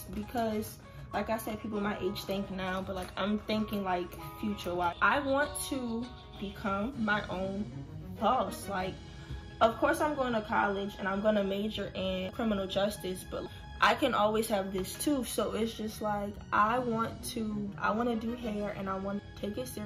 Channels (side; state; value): both; identical; correlation 1.00